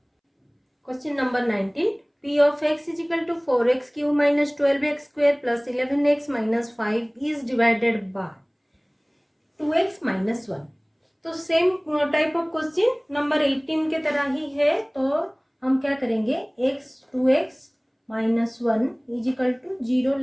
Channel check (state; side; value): identical; both; correlation 1.00